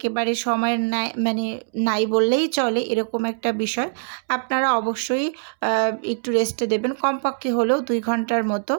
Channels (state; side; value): silent; left; 63 dB below the other